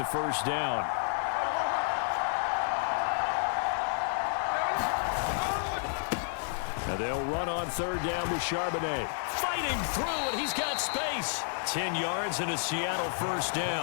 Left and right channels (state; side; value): silent; right; 55 dB below the other